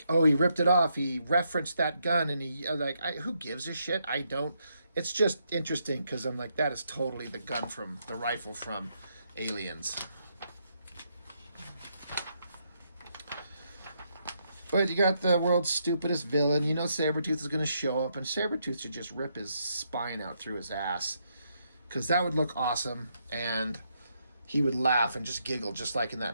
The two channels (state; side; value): inverted; both; correlation -0.78